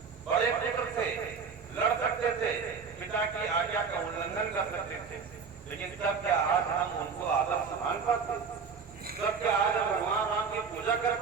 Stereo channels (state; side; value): quieter; left; 5.7 dB